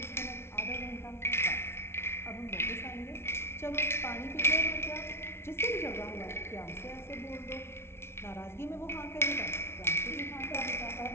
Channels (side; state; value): right; late; 0.12 ms